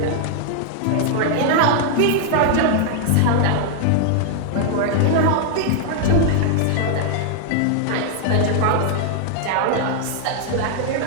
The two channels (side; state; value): both; different; correlation 0.00